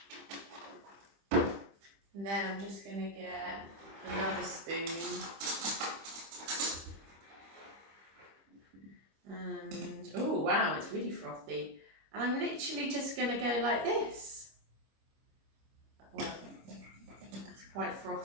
And then I'm just going to get another spoon. And, oh wow, it's really frothy. And I'm literally just going to go like this. Well, it's quite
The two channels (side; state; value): left; late; 26 ms